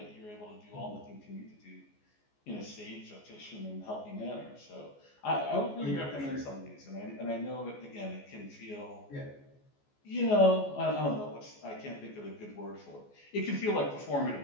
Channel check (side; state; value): right; late; 14 ms